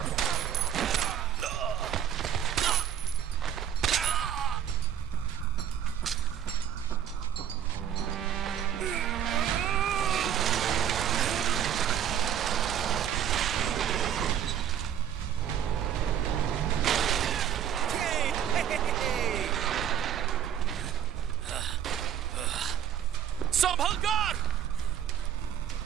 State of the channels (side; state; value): left; quieter; 9.5 dB